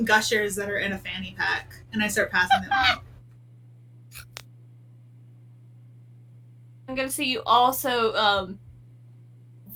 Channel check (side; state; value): both; identical; correlation 1.00